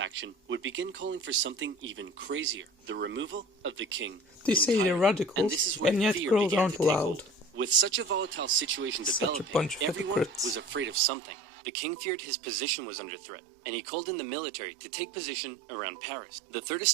would begin calling for something even crazier, the removal of the king. They say they're radicals, and yet girls aren't allowed. With such a volatile situation Such a bunch developing, of everyone hypocrites. was afraid of something. The king feared his position was under threat, and he called in the military to take position around Paris. The Third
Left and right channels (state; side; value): drops out; left; at 11.0 s